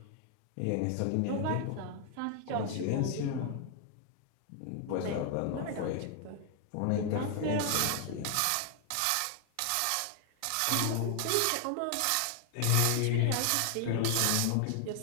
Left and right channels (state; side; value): different; both; correlation 0.00